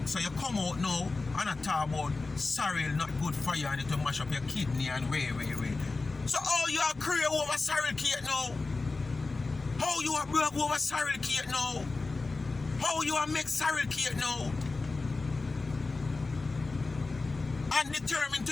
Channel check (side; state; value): right; quieter; 3.6 dB